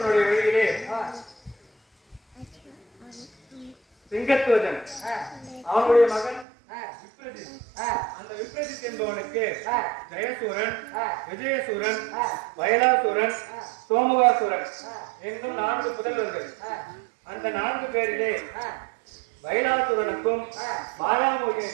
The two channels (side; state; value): left; drops out; at 6.5 s